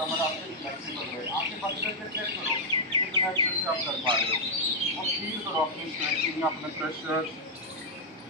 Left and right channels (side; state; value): both; normal; correlation -0.05